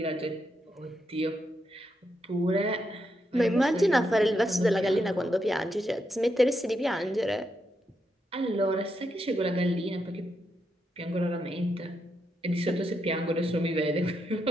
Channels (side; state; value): both; normal; correlation 0.82